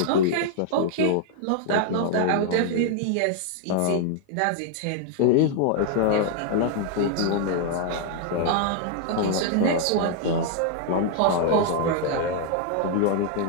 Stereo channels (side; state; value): both; different; correlation 0.00